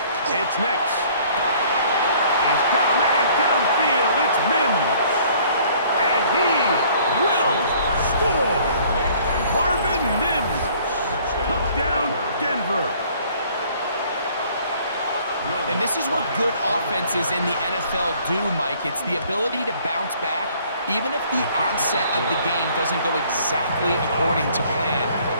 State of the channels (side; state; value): both; inverted; correlation -0.57